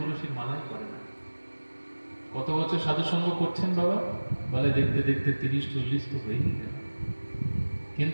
মালাই করে না। কত বছর সাধু সঙ্গ করছেন বাবা? বলে দেখতে দেখতে 30-40 তো হয়েই গেল,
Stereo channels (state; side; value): inverted; both; correlation -1.00